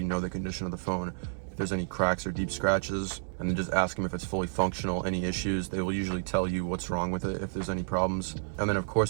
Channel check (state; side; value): silent; left; digital silence